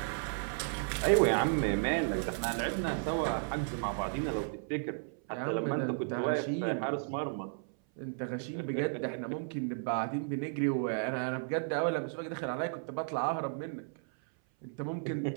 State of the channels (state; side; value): silent; left; 55 dB below the other